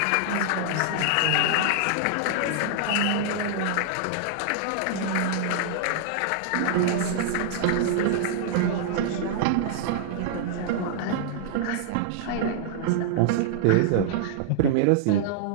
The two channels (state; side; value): different; both; correlation -0.01